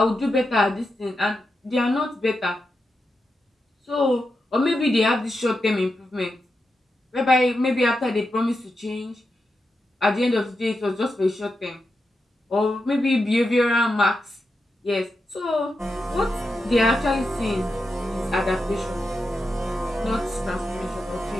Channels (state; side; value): normal; both; correlation 0.88